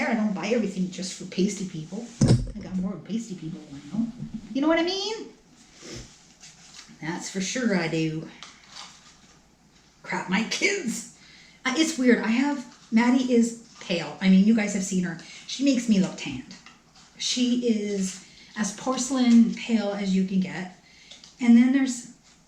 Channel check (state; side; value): identical; both; correlation 1.00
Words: I don't buy everything just for pasty people. I got more pasty people than I know. You know what I mean? That's for sure I do. Crap, my kids. It's weird. Maddie is pale. I mean, you guys have seen her. She makes me look tanned. She is as porcelain pale as you can get. And